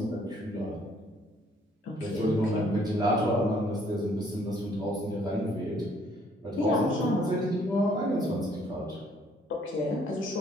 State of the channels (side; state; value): both; normal; correlation 0.63